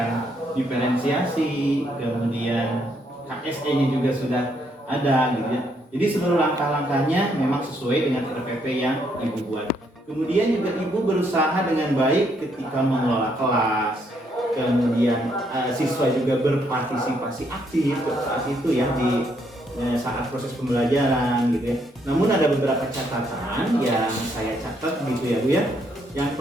diferensiasi, kemudian KSE-nya juga sudah ada gitu ya. Jadi seluruh langkah-langkahnya memang sesuai dengan RPP yang Ibu buat. Kemudian juga Ibu berusaha dengan baik ketika mengelola kelas, kemudian siswa juga berpartisipasi aktif saat itu ya di saat proses pembelajaran gitu ya. Namun ada beberapa catatan yang saya catat gitu ya Bu ya. Yang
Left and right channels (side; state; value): both; normal; correlation 0.73